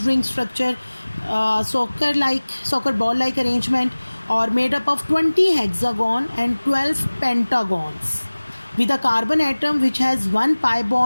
ring structure, soccer ball like arrangement, or made up of 20 hexagon and 12 pentagons, with a carbon atom which has one pi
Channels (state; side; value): inverted; both; correlation -1.00